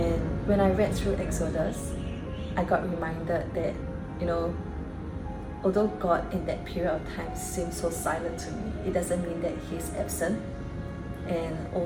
when I read through Exodus, I got reminded that, although God in that period of time seemed so silent to me, it doesn't mean that He's absent. and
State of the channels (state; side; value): identical; both; correlation 1.00